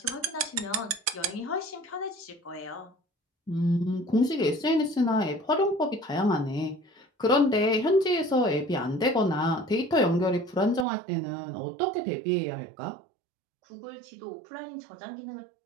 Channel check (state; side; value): drops out; left; at 10.9 s